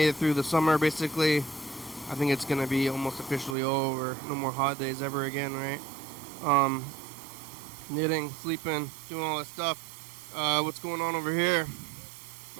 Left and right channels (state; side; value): drops out; left; at 3.6 s